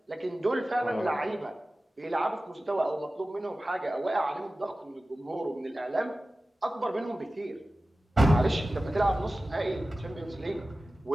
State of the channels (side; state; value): both; normal; correlation 0.96